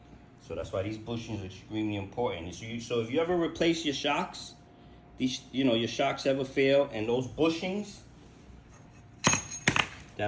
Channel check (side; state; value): both; identical; correlation 1.00